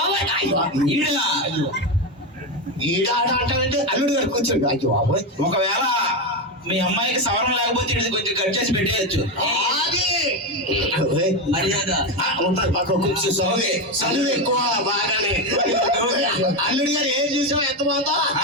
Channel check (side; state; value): both; normal; correlation 0.12